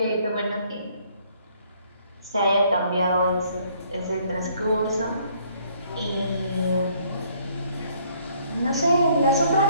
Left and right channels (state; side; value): inverted; both; correlation -0.64